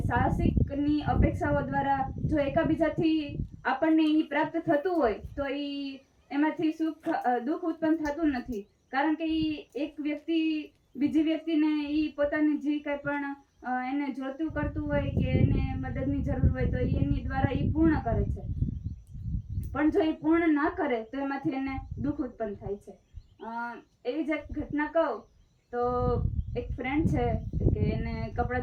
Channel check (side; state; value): both; identical; correlation 1.00